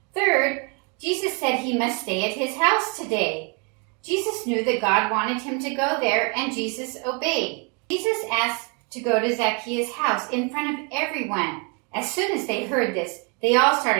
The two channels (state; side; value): quieter; left; 33.5 dB